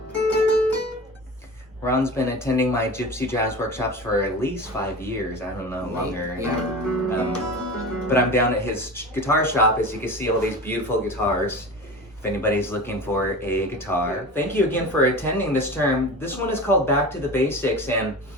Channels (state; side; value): normal; both; correlation 0.32